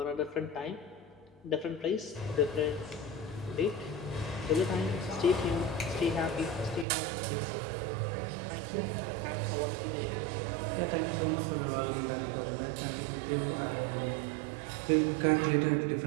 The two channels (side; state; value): left; drops out; at 6.9 s